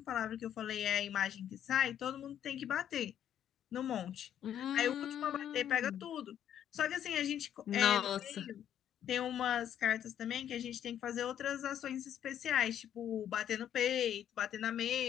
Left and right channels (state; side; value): quieter; right; 10.1 dB